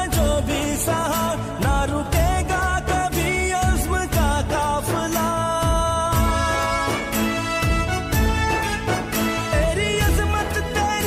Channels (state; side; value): identical; both; correlation 1.00